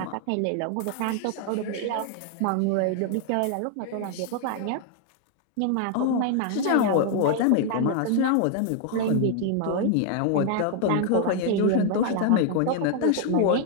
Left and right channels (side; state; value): both; different; correlation 0.00